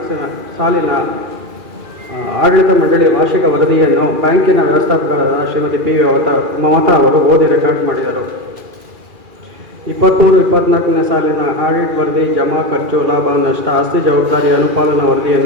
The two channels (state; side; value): late; left; 2.4 ms